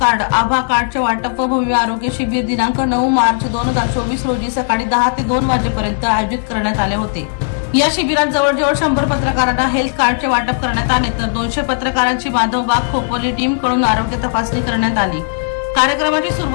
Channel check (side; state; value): right; silent; digital silence